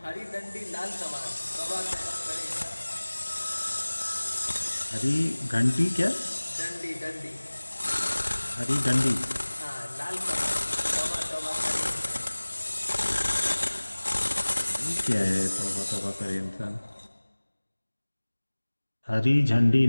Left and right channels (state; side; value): inverted; both; correlation -1.00